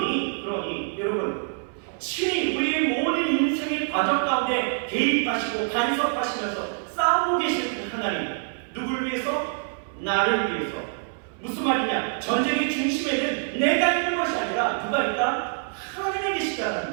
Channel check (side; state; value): left; silent; 61 dB below the other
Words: 여러분 친히 우리의 모든 인생의 과정 가운데 개입하시고 간섭하시면서 싸우고 계시는 그 하나님, 누구를 위해서? 나를 위해서. 무슨 말이냐? 전쟁의 중심에는 내가 있는 것이 아니라 누가 있다? 하나님이 계시다는